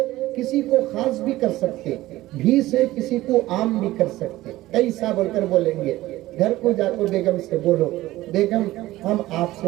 किसी को खास भी कर सकते, भी से किसी को आम भी कर सकते। कैसा बोलकर बोलेंगे, घर को जाकर बेगम से बोलो, बेगम हम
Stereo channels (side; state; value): left; quieter; 16.9 dB